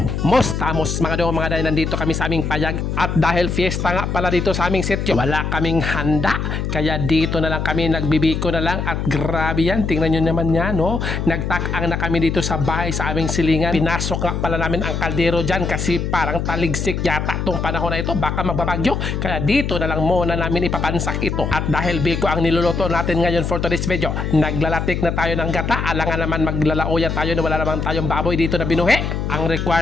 Mostamos mga dong mga day, nandito kami sa aming payag. At dahil fiesta nga pala dito sa aming sityo, wala kaming handa. Kaya dito na lang kami, nagbibiko na lang. At grabe yan, tingnan nyo naman yan, no? Nagtakang na kami dito sa bahay sa aming silingan. Pinasok nga pala namin ang kaldero dyan kasi parang taligsik yata tong panahon na ito. Baka magbabagyo. Kaya dito na lang muna namin ipapansak ito. At dahil biko ang niluluto natin ngayon for today's video, naglalatik na tayo ng gata. Alangan naman maglalauya tayo na wala naman tayong baboy dito na binuhi. Ang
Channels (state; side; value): noise; left; hum, 2 dB below the sound